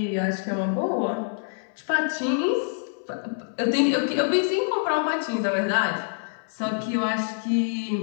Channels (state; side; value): silent; right; 61 dB below the other